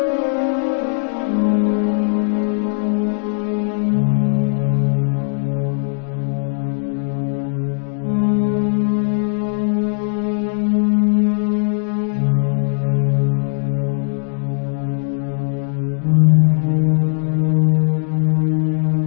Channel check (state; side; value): silent; right; 64 dB below the other